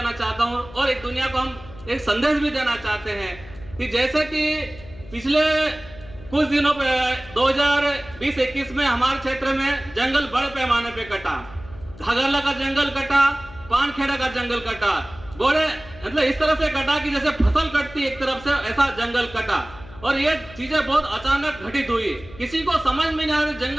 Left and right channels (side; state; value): left; noise; hum, 19 dB below the sound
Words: चाहता हूँ, और एक दुनिया को हम एक संदेश भी देना चाहते हैं कि जैसे कि पिछले कुछ दिनों पे 2020-21 में हमारे क्षेत्र में जंगल बड़े पैमाने पे कटा, घाघरला का जंगल कटा, पानखेड़ा का जंगल कटा, बड़े मतलब इस तरह से कटा कि जैसे फसल कटती एक तरफ से, ऐसा जंगल कटा। और ये चीजें बहुत अचानक घटित हुई, किसी को समझ में नहीं आ रहा